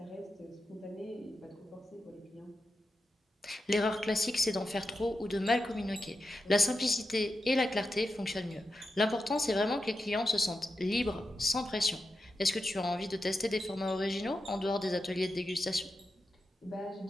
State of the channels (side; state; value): both; normal; correlation 0.89